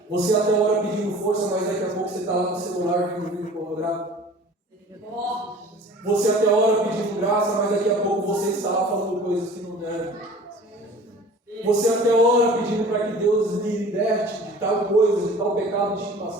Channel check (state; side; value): normal; both; correlation 0.45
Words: Você até ora pedindo força, mas daqui a pouco você está lá no celular vendo vídeo pornográfico. Você até ora pedindo graça, mas daqui a pouco você está lá falando coisas que não devem. Você até ora pedindo para que Deus lhe liberte de tal coisa, de tal pecado de